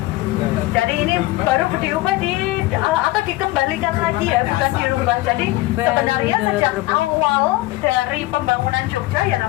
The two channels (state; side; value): quieter; right; 18.7 dB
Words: Jadi ini baru diubah atau dikembalikan lagi ya, bukan dirubah. Jadi sebenarnya sejak awal dari pembangunan Jogja ya